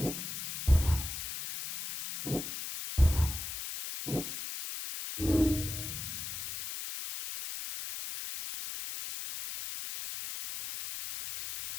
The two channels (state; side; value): noise; left; hiss, 6 dB below the sound